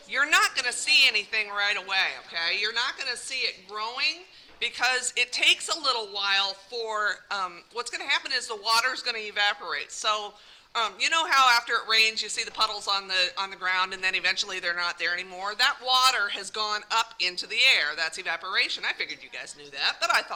You're not gonna see anything right away, okay? You're not gonna see it growing because it takes a little while for. What's gonna happen is the water is gonna evaporate. So You know how after it rains, you see the puddles on the ground, and then eventually they're not there anymore? That water has gone up into the air. That's evaporation. I figured you guys knew that, but I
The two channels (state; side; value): identical; both; correlation 1.00